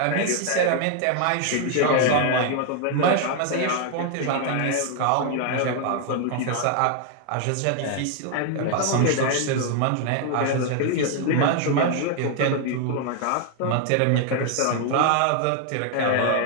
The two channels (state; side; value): different; both; correlation 0.00